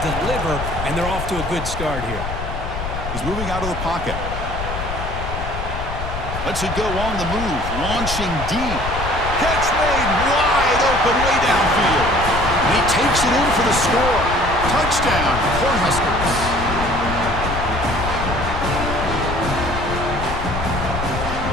deliver, and they're off to a good start here. He's moving out of the pocket. Lets it go on the move. Launching deep. Catch made wide open way downfield. And he takes it in for the score. Touchdown, Cornhuskers.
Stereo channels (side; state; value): left; noise; rumble, 6 dB below the sound